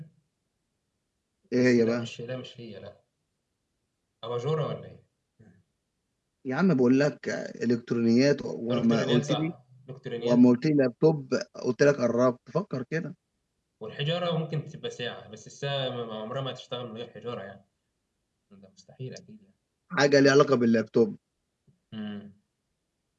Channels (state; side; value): identical; both; correlation 1.00